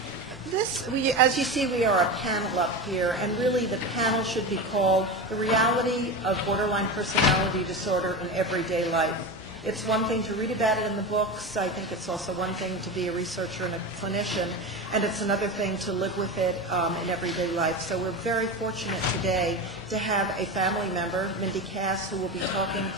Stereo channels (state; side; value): normal; both; correlation 0.23